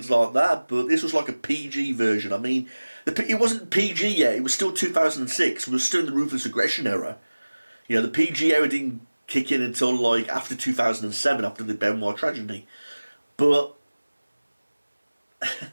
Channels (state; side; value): inverted; both; correlation -1.00